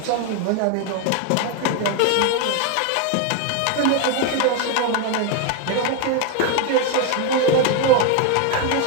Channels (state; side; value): different; both; correlation 0.01